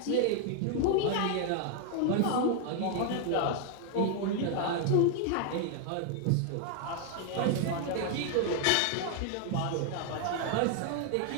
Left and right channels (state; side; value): different; both; correlation 0.00